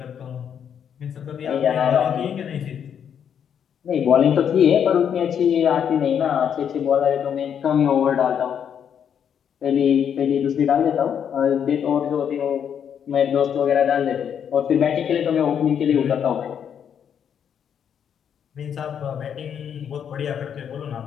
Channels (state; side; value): quieter; right; 8.3 dB